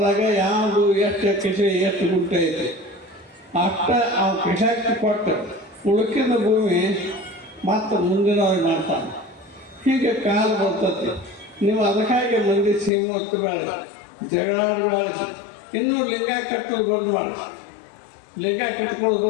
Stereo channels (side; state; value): right; drops out; at 12.9 s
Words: ಯಾವುದು ಎಷ್ಟು ಕಿಸೆ ಎಷ್ಟು ಗುಂಟೆ ಐತಿ ಅಷ್ಟ ಅವು ಕಿಸಕ್ಕೆ ಕೊಟ್ಟು ಉಳುಕಿದ ಭೂಮಿ ಮತ್ತು ಮುಂದಿನವ್ರಿಗೆ ಮಾಡ್ತಾನೆ. ಹೀಗೆ ಕಾಲ ಬರ್ತತಿ. ನೀವು ಅದಕ್ಕಾಗಿ ಮಂದಿ ಸೀಮು ಬೇಡ, ಜಗಳಾಡಬೇಡ. ಇನ್ನೂ ಲಿಂಗ ಕಟ್ಟೋದು ಬಂದು ಮಾಡಿ, ಲಿಂಗ ಕಟ್ಕೊಳ್ಳೋದು